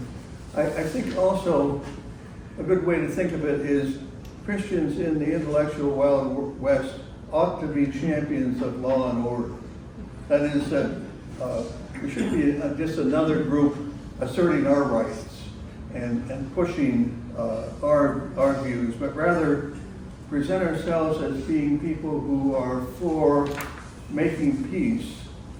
I think also a good way to think of it is Christians in the intellectual Wild West ought to be champions of law and order. That is, that we should be just another group asserting our rights and pushing our views, but rather present ourselves as being people who are for making peace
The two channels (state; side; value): identical; both; correlation 1.00